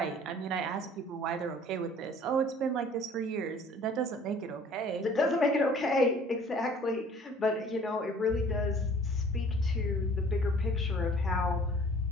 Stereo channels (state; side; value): normal; both; correlation 0.52